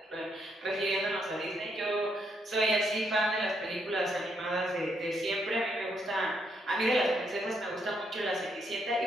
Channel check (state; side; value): normal; both; correlation 0.75